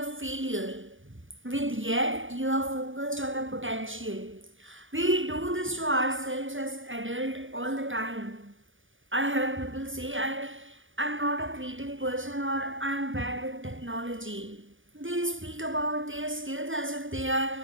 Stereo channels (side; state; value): left; late; 0.57 ms